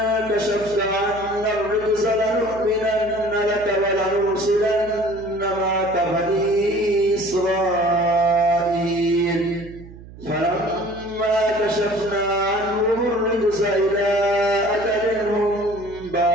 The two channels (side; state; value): right; noise; hum, 18 dB below the sound